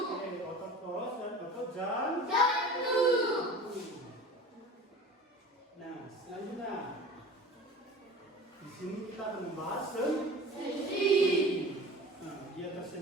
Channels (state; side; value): normal; both; correlation 0.39